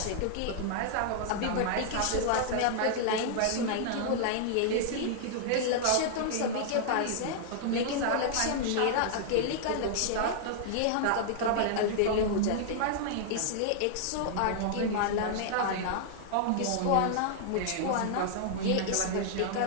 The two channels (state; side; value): different; both; correlation -0.01